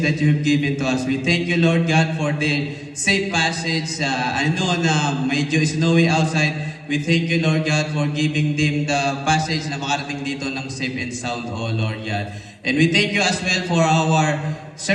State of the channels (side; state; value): both; identical; correlation 1.00